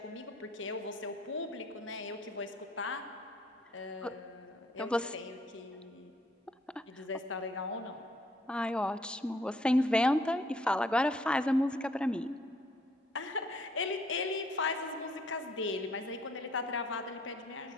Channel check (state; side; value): normal; both; correlation 0.64